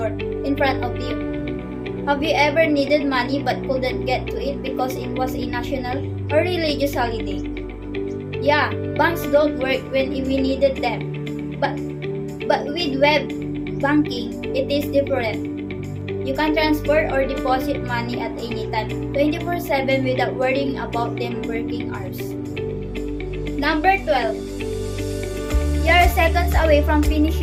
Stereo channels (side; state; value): both; identical; correlation 1.00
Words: in front of you? Have you ever needed money but couldn't get to it because it was a national or religious holiday? Yeah, banks don't work when we needed them. But with web banking, it is different. You can transfer or deposit money at any time, 24/7 without worrying about them working hours. Number 12. You are seconds away from